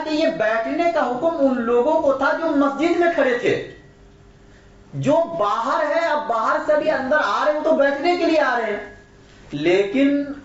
یہ بیٹھنے کا حکم ان لوگوں کو تھا جو مسجد میں کھڑے تھے. جو باہر ہے، اب باہر سے بھی اندر آ رہے ہیں تو بیٹھنے کے لیے آ رہے ہیں، لیکن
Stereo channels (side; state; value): both; identical; correlation 1.00